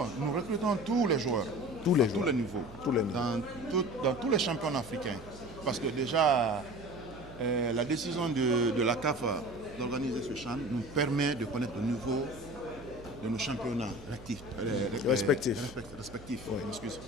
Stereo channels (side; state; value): right; noise; hum, 18 dB below the sound